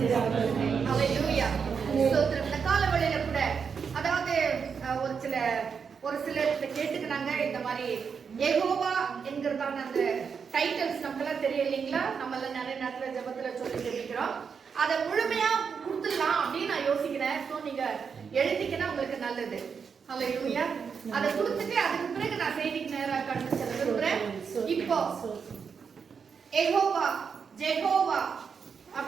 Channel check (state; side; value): quieter; left; 6.2 dB